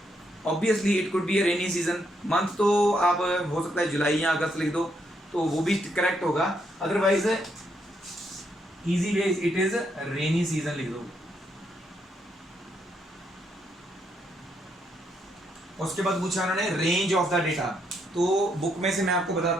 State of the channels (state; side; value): normal; both; correlation 0.76